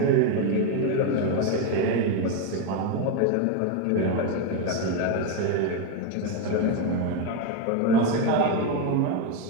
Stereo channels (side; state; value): both; different; correlation 0.02